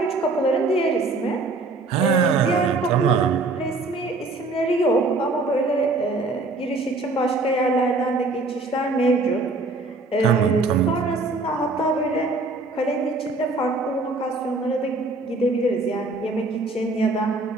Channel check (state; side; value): quieter; left; 3.3 dB